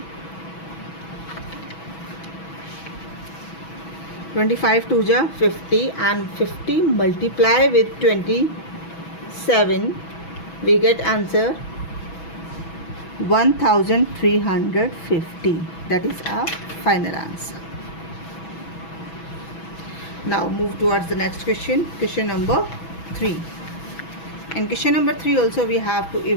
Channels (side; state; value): right; late; 6.1 ms